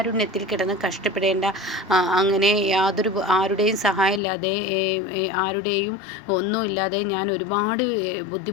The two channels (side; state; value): right; drops out; at 4.2 s